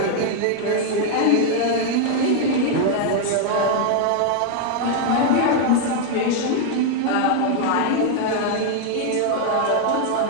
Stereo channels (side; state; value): both; different; correlation 0.00